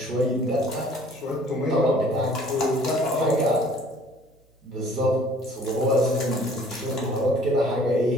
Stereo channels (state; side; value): normal; both; correlation 0.54